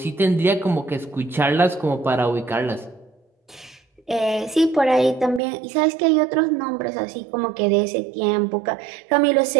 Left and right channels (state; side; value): drops out; left; at 5.4 s